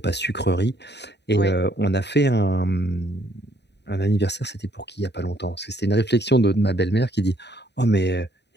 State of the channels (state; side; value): late; right; 0.50 ms